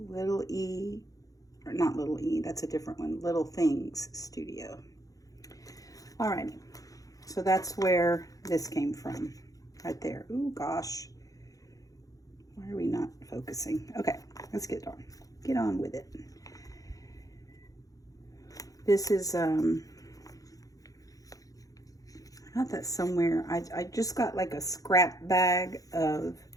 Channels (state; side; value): late; right; 0.17 ms